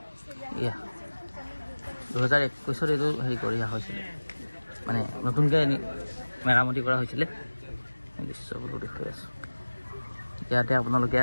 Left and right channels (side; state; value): both; inverted; correlation -1.00